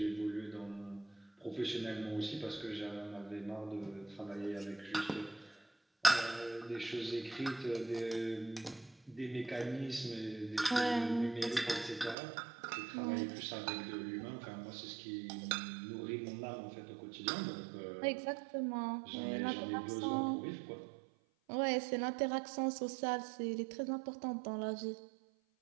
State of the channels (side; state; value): left; drops out; at 12.2 s